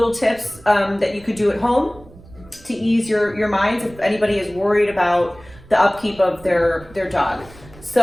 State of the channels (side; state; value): right; noise; rumble, 22 dB below the sound